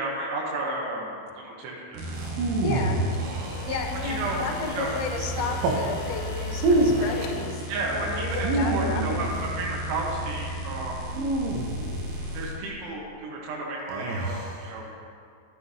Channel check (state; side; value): late; left; 23 ms